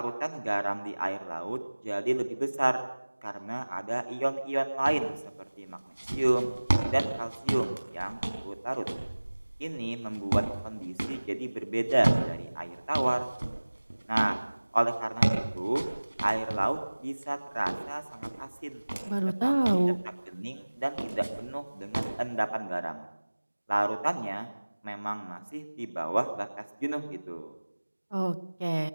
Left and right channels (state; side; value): inverted; both; correlation -1.00